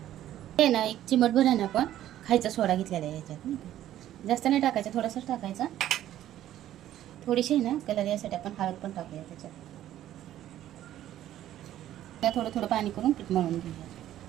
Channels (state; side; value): quieter; left; 12.5 dB